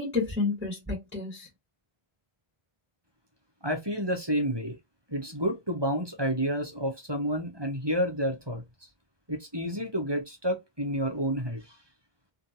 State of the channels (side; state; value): left; late; 1.2 ms